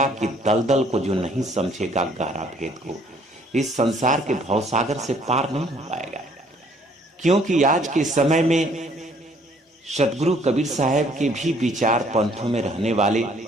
की दलदल को जो नहीं समझेगा, गहरा भेद को, इस संसार के भवसागर से पार नहीं हो पाएगा। क्योंकि आज के समय में सतगुरु कबीर साहब के भी विचार पंथों में रहने वाले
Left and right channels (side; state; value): both; normal; correlation 0.61